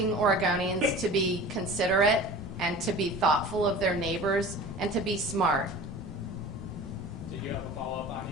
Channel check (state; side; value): normal; both; correlation 0.39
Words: Oregonians to be considerate and to be thoughtful of their neighbors and to be smart. Did you have a follow-up,